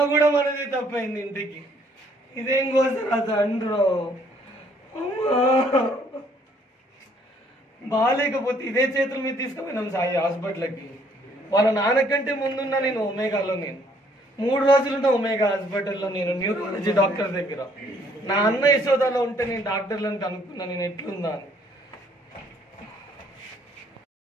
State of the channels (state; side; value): normal; both; correlation 0.64